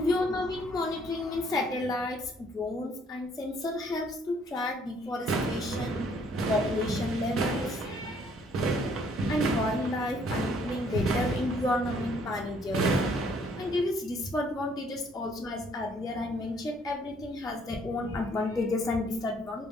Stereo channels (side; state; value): both; normal; correlation 0.64